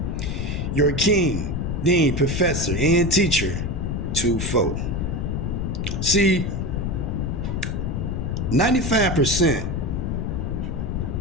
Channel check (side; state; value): left; noise; rumble, 1 dB below the sound